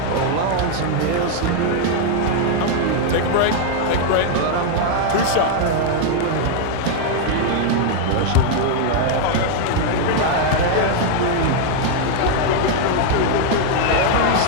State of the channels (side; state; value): both; different; correlation 0.00